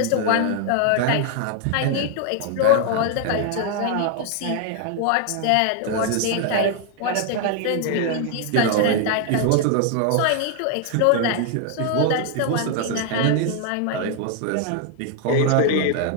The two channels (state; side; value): different; both; correlation 0.00